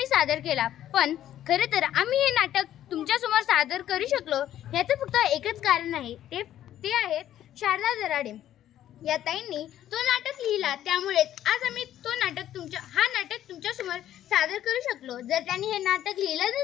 सादर केला। पण खरे तर आम्ही हे नाटक तुमच्या समोर सादर करू शकलो याचं फक्त एकच कारण आहे, ते आहेत शारदा दराडे या ताईंनी तो नाटक लिहिला। त्यामुळे आज आम्ही हा नाटक तुमच्या समोर सादर करू शकलो। जर त्यांनी हे नाटक लिहिलं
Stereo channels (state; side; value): quieter; right; 11.9 dB